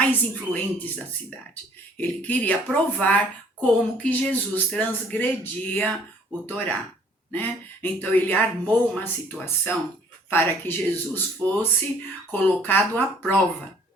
influentes da cidade. Ele queria provar como que Jesus transgredia o Torá, né? Então ele armou uma situação para que Jesus fosse colocado à prova.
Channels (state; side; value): normal; both; correlation 0.57